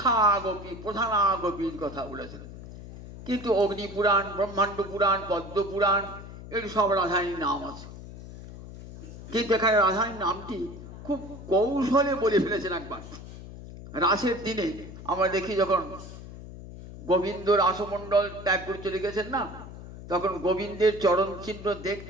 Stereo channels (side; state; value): left; noise; hum, 14 dB below the sound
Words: গোপী, প্রধানা গোপীর কথা বলেছেন। কিন্তু অগ্নিপুরাণ, ব্রহ্মাণ্ড পুরাণ, পদ্ম পুরাণ, এর সব রাধারানীর নাম আছে। কিন্তু এখানে রাধারানীর নামটি খুব কৌশলে বলে ফেলেছেন একবার। রাসের দিনে আমরা দেখি যখন গোবিন্দ রাসমণ্ডল ত্যাগ করে চলে গেছেন না, তখন গোবিন্দের চরণ চিহ্ন